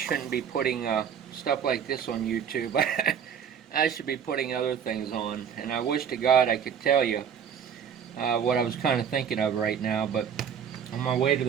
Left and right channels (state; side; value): quieter; left; 7.8 dB